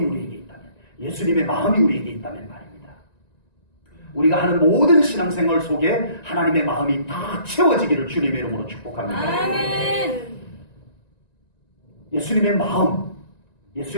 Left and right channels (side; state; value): right; late; 1.9 ms